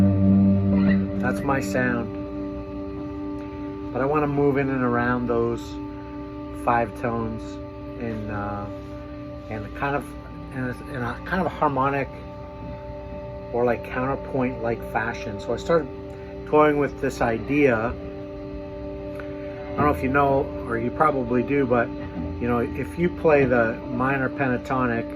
That's my sound. But I want to move in and around those 5 tones in a kind of harmonic or like counterpoint like fashion. So I started toying with this idea. I don't know if you know, or you probably do, but you know, if you play the minor pentatonic,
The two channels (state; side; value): identical; both; correlation 1.00